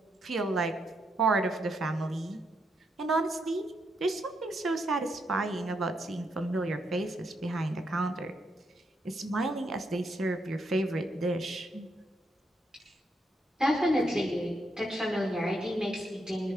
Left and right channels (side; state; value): both; normal; correlation 0.79